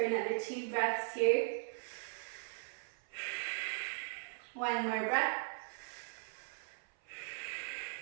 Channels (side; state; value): left; silent; 52 dB below the other